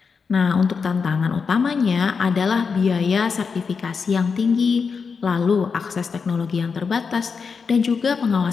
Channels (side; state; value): right; quieter; 5.5 dB